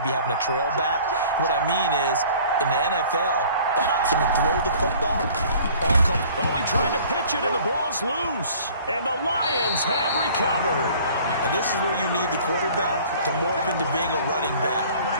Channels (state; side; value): inverted; both; correlation -0.50